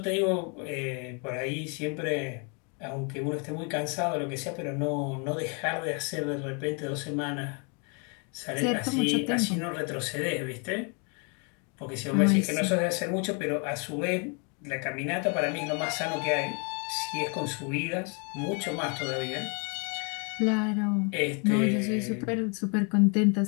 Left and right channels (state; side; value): quieter; right; 36.0 dB